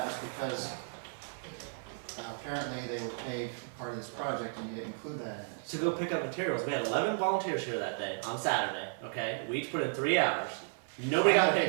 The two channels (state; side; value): silent; left; 55 dB below the other